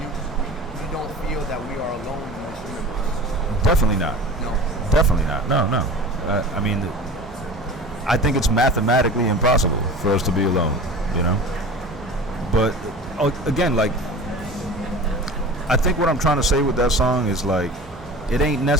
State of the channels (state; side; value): normal; both; correlation 0.37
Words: you don't feel that we are alone in this universe. Definitely not. No. Definitely not. No. I mean, I think it's mathematically impossible for us to be alone, you know? But, again, like, I think what I'm trying to say with that song is, like, it ain't